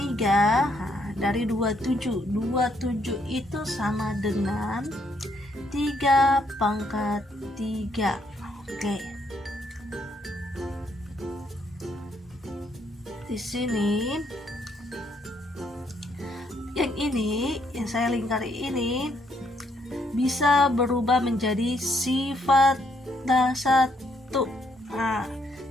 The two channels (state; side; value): normal; both; correlation 0.72